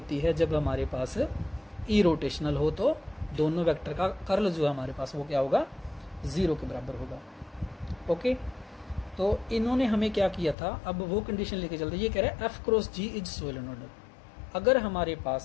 है जब हमारे पास ई रोटेशनल हो, तो दोनों वेक्टर का कर्ल जो है हमारे पास वो क्या होगा 0 के बराबर होगा। ओके, तो इन्होंने हमें क्या किया था, अब वो कंडीशन लेके चलते, ये कह रहा है F cross G is solenoidal. अगर हमारे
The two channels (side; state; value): right; drops out; at 10.6 s